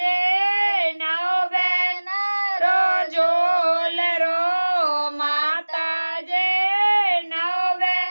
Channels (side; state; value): both; inverted; correlation -1.00